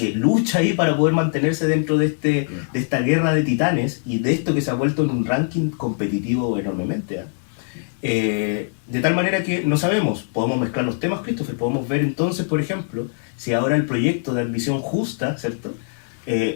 lucha ahí para poder mantenerse dentro de esta guerra de titanes y de esto que se ha vuelto en un ranking competitivo enormemente, ¿eh? De tal manera que no sabemos, podemos mezclar los temas, Christopher, podemos ver entonces, por ejemplo, si ahora el proyecto de admisión justa, ¿cierto?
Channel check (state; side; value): silent; right; 64 dB below the other